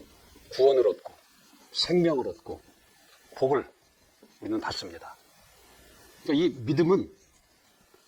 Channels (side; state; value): both; identical; correlation 1.00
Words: 구원을 얻고 생명을 얻고 복을 우리는 받습니다. 그러니까 이 믿음은,